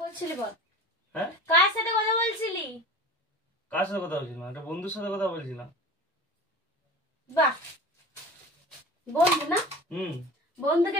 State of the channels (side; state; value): both; normal; correlation 0.35